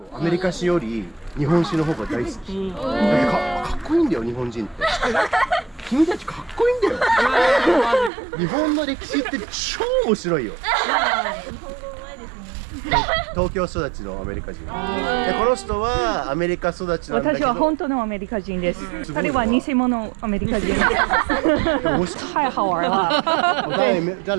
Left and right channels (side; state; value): left; drops out; at 8.1 s